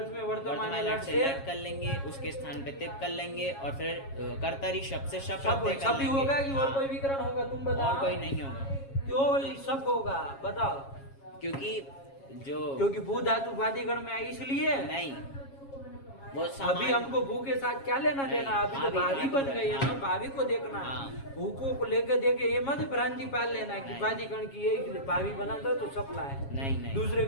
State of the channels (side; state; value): right; late; 7.3 ms